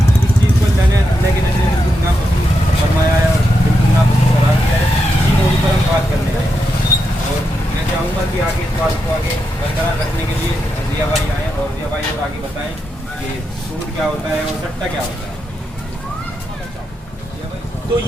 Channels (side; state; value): both; normal; correlation 0.85